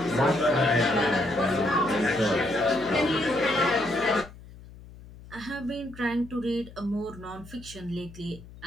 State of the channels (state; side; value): noise; left; hum, 18 dB below the sound